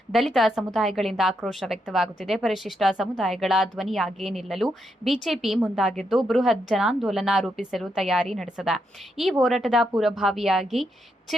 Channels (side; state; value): both; normal; correlation 0.81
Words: ದಲಿತ ಸಮುದಾಯಗಳಿಂದ ಆಕ್ರೋಶ ವ್ಯಕ್ತವಾಗುತ್ತಿದೆ. ಪರಿಶಿಷ್ಟ ಸಮುದಾಯಗಳ ಧ್ವನಿಯಾಗಿ ನಿಲ್ಲಲು ಬಿಜೆಪಿ ಮುಂದಾಗಿದ್ದು ಬೃಹತ್ ಜನಾಂದೋಲನ ರೂಪಿಸಲು ತಯಾರಿ ನಡೆಸಿದೆ. ಈ ಹೋರಾಟದ ಪೂರ್ವಭಾವಿಯಾಗಿ